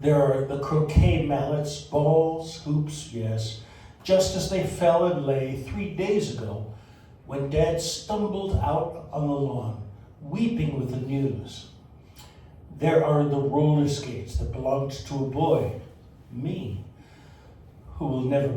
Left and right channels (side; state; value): both; identical; correlation 1.00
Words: are the croquet mallets, balls, hoops, yes, just as they fell and lay 3 days ago when Dad stumbled out on the lawn, weeping with the news. There are the roller skates that belonged to a boy, me, who will never